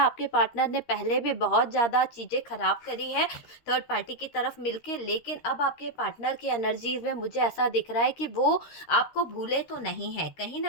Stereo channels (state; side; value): late; right; 13 ms